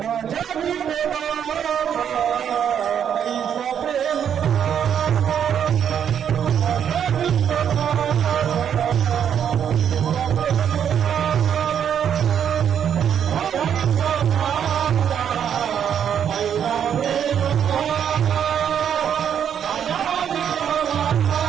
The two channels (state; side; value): quieter; left; 8.6 dB